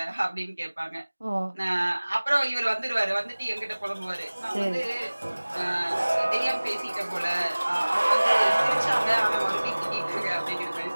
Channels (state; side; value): inverted; both; correlation -1.00